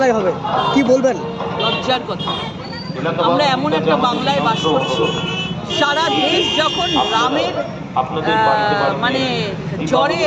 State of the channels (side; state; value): both; identical; correlation 1.00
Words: হবে, কি বলবেন? লজ্জার কথা। আমরা এমন একটা বাংলায় বাস করছি, সারা দেশ যখন রামের মানে জ্বরে